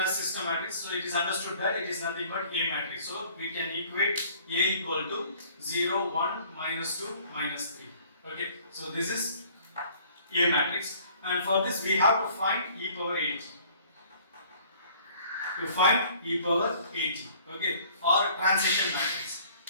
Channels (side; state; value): both; inverted; correlation -0.55